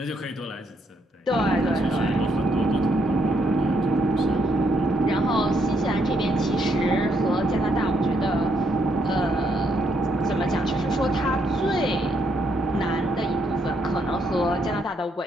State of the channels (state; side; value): normal; both; correlation 0.74